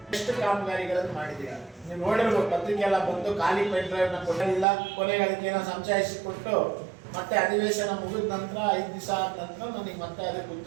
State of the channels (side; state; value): left; drops out; at 4.7 s